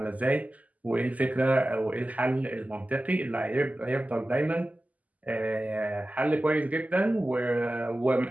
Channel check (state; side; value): late; left; 0.076 ms